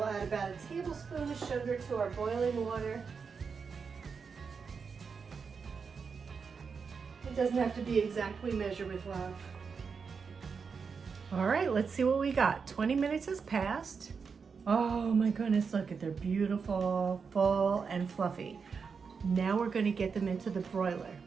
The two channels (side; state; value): left; quieter; 5.6 dB